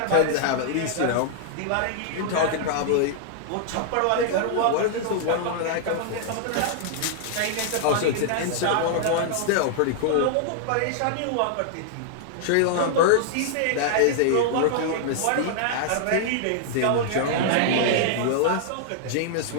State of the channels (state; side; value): different; both; correlation -0.01